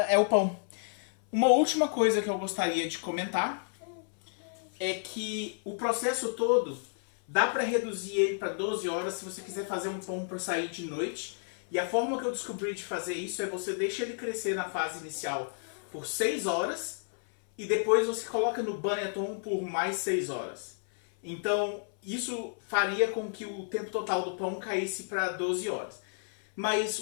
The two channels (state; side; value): silent; right; 57 dB below the other